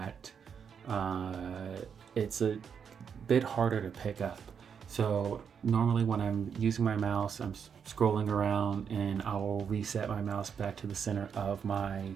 it's a bit harder to pick up. So normally when I'm using my mouse, I'm scrolling around and I will reset my mouse back to the center of my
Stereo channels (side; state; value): left; quieter; 7.1 dB